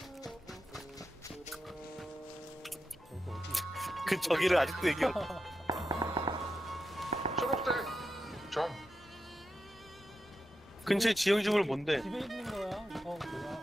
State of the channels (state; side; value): normal; both; correlation 0.88